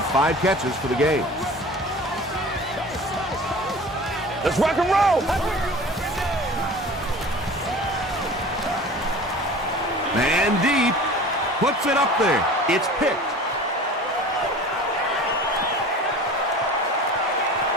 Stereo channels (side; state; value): both; normal; correlation 0.40